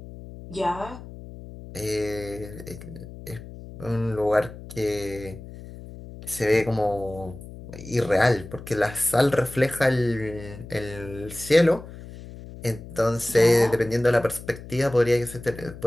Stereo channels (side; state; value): left; noise; hum, 14 dB below the sound